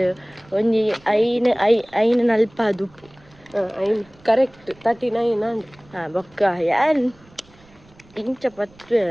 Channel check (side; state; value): right; noise; rumble, 28 dB below the sound